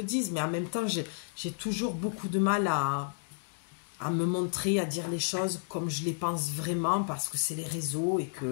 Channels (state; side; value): silent; right; digital silence